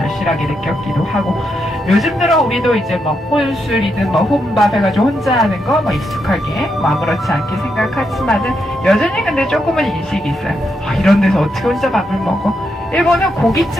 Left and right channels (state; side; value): normal; both; correlation 0.82